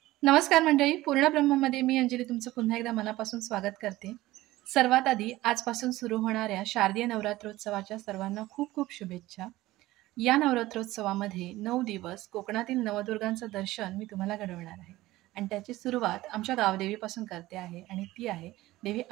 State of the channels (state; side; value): quieter; left; 17.4 dB